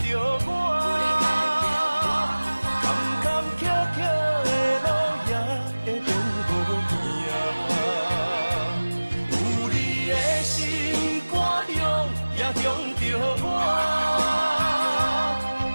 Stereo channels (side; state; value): both; inverted; correlation -1.00